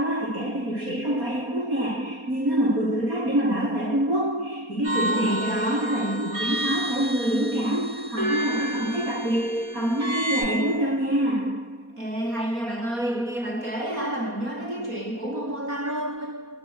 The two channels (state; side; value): late; left; 4.2 ms